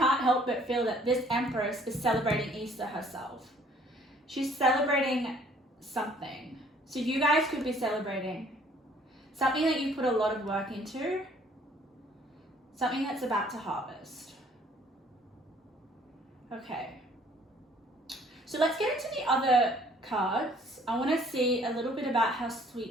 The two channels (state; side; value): normal; both; correlation 0.59